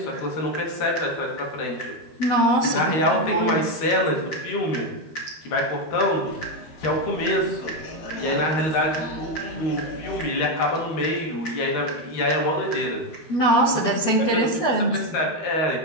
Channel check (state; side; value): late; right; 12 ms